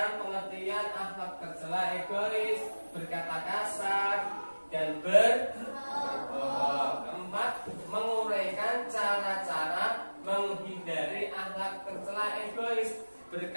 pengertian akhlak tercela, egois, berkata kasar, dan berbohong. Keempat, menguraikan cara-cara menghindari akhlak tercela, egois,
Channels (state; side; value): inverted; both; correlation -1.00